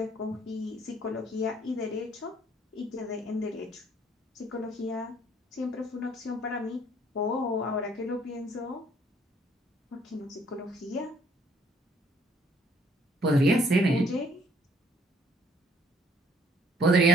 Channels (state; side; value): normal; both; correlation 0.63